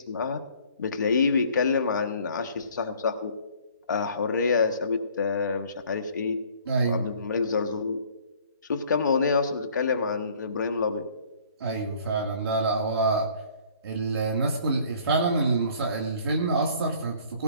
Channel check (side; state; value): both; inverted; correlation -0.56